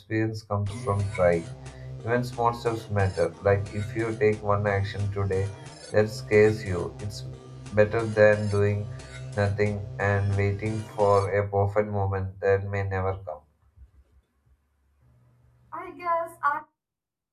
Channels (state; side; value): identical; both; correlation 1.00